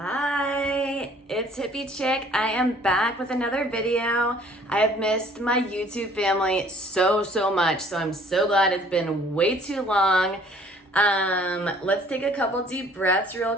it's Hippie Chick. I am back with another video. I have missed my YouTube family so much, so I'm so glad it's been way too long. Let's take a couple deep breaths real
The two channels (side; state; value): both; normal; correlation 0.56